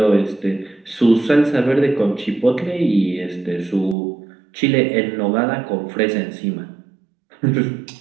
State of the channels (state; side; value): drops out; left; at 4.0 s